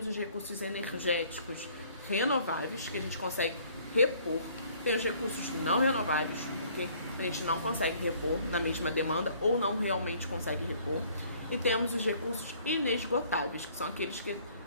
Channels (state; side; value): inverted; both; correlation -0.59